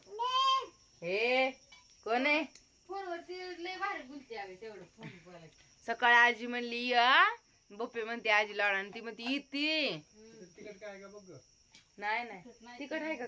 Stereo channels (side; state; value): both; identical; correlation 1.00